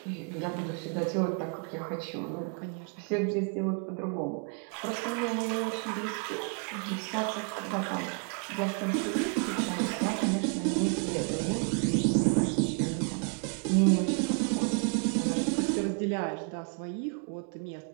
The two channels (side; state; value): left; quieter; 40.0 dB